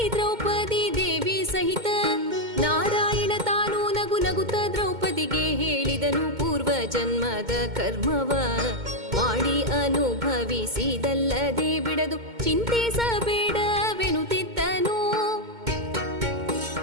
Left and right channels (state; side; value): late; left; 2.1 ms